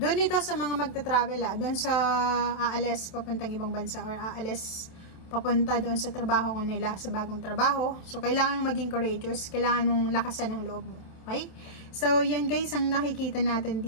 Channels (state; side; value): late; right; 27 ms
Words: ito sa mga magta-travel, doon sa aalis papuntang ibang bansa, or aalis papunta doon sa trabaho ko nila, sa bagong trabaho. So, kailangan mong maging courageous. Kailangan mong lakasan ng loob mo. Okay? So, yan guys ang nakikita natin